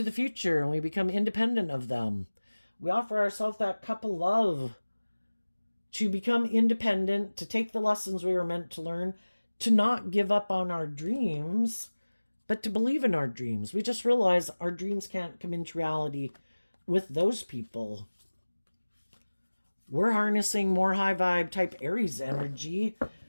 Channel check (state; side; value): inverted; both; correlation -1.00